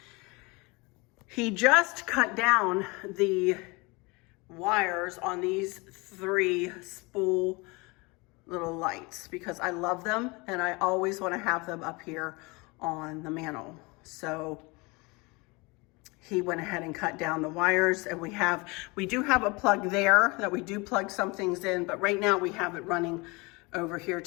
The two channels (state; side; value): quieter; right; 26.3 dB